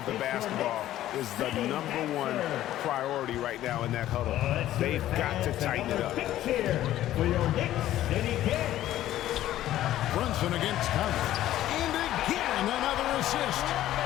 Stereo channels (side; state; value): right; quieter; 13.4 dB